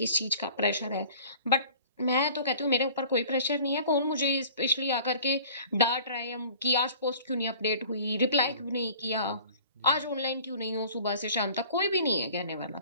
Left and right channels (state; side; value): inverted; both; correlation -0.47